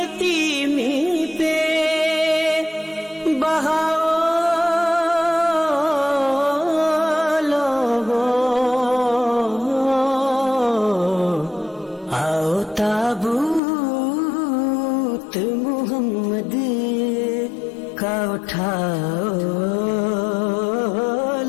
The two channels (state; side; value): drops out; right; at 13.6 s